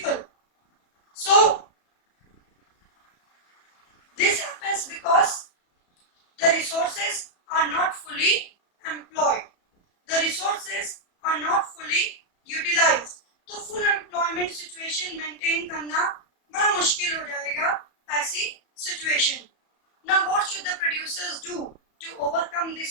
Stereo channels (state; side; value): late; right; 34 ms